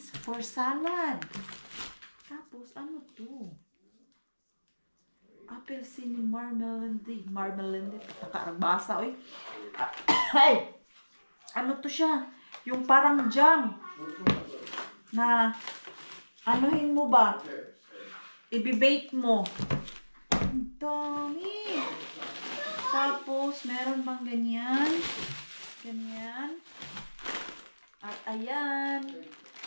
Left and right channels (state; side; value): inverted; both; correlation -1.00